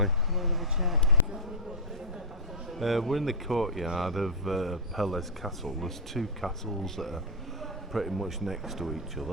Can I have a check? We're in the courtyard of Pelle's castle. There's two castles that are pretty much next to each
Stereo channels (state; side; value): normal; both; correlation -0.05